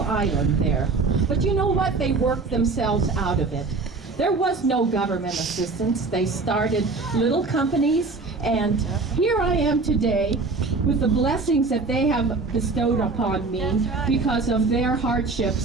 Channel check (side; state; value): left; quieter; 3.8 dB